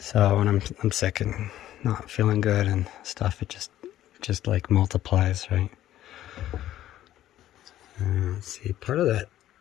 when I'm sick and not feeling good and stuff, it just like multiplies, right? Let's see. Part of that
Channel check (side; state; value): right; quieter; 13.0 dB